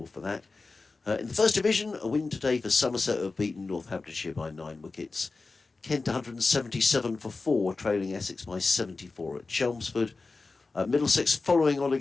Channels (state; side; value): quieter; right; 3.8 dB